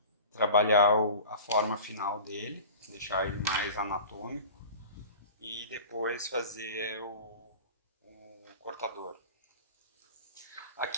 trabalhar a forma final dele, deixar ele mais anatômico e depois fazer o cortador.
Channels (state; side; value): inverted; both; correlation -0.38